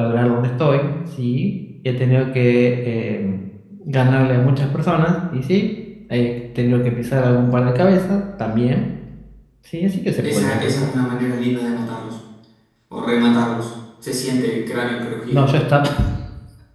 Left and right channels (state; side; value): identical; both; correlation 1.00